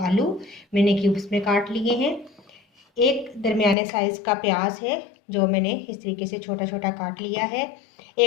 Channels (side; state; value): right; drops out; at 3.8 s